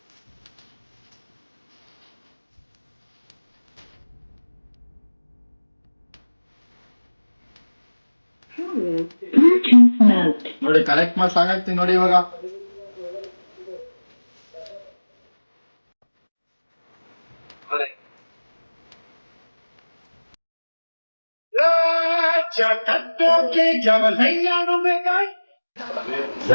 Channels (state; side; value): inverted; both; correlation -1.00